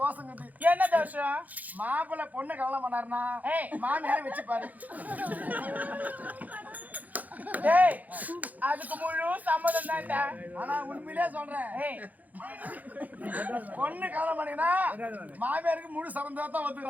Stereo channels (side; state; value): left; late; 0.080 ms